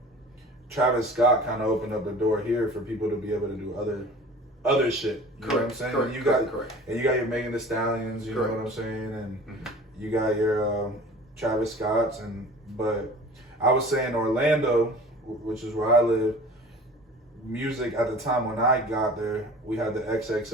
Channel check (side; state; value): both; normal; correlation 0.42